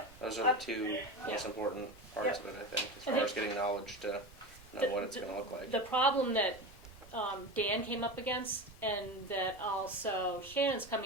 Those are the two most important parts of it, I think, as far as getting knowledge to know what it's gonna look like. The problem that Dan came up against, and that also Shannon's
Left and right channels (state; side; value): noise; right; rumble, 21 dB below the sound